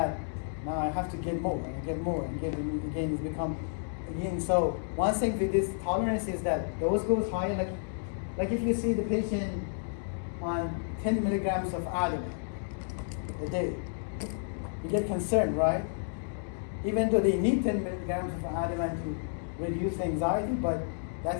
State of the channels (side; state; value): right; silent; digital silence